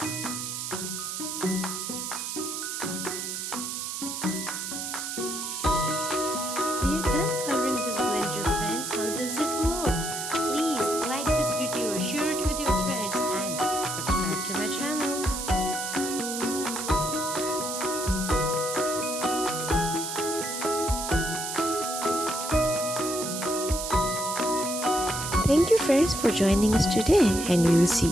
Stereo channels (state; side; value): noise; right; hiss, 5 dB below the sound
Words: We are done coloring this blender, friends. How does it look? Please like this video, share it with your friends, and subscribe to my channel. Thank you friends for joining us today, and we will see